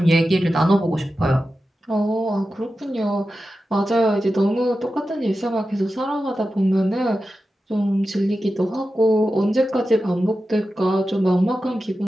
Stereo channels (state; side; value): normal; both; correlation 0.92